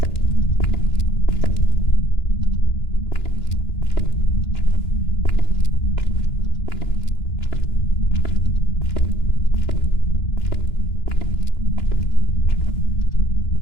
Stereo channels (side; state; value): right; late; 2.9 ms